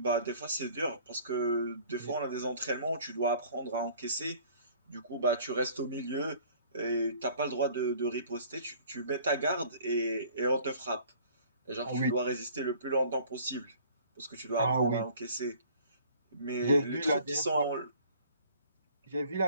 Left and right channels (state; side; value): inverted; both; correlation -0.52